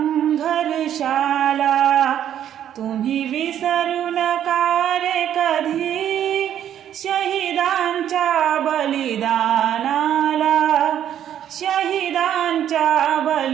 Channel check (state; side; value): quieter; left; 10.4 dB